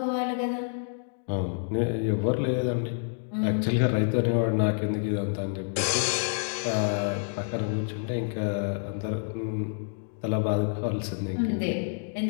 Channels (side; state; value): right; silent; digital silence